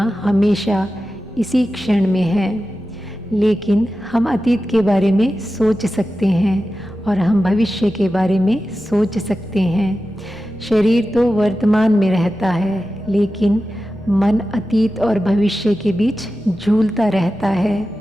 हमेशा इसी क्षण में है। लेकिन हम अतीत के बारे में सोच सकते हैं और हम भविष्य के बारे में सोच सकते हैं। शरीर तो वर्तमान में रहता है, लेकिन मन अतीत और भविष्य के बीच झूलता रहता है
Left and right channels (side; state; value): both; normal; correlation 0.93